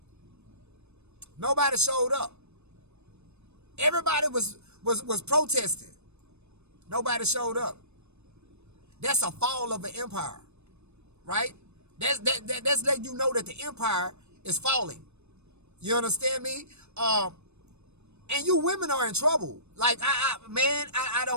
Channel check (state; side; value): late; left; 0.81 ms